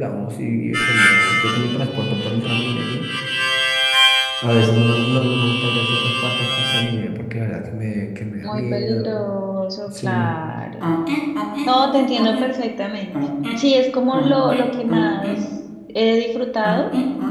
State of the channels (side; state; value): both; identical; correlation 1.00